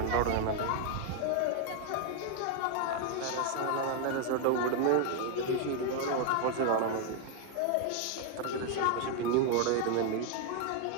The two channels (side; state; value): both; different; correlation 0.00